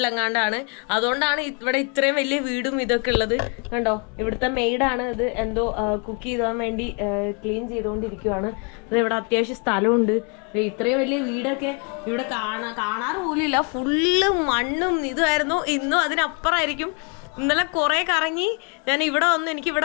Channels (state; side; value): quieter; right; 36.0 dB